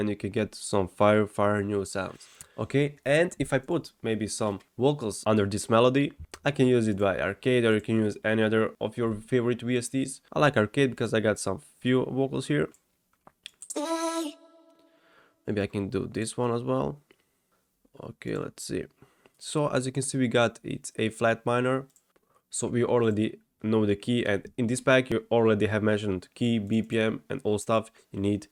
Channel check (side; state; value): both; identical; correlation 1.00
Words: you can get some fire new sounds. Okay, and if I put maybe some vocals under this melody, I can use it by arcade, or you can use any other of your favorite VSTs. I like arcade because I got some few vocals here. Maybe I can do this one as well. Okay, let's see. So as you can see, we got it's A flat minor. So we already know the key, and in this pack you already have mentioned key, BPM and all stuff you need